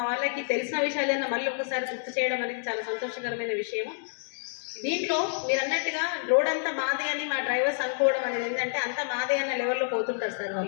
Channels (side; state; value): right; silent; digital silence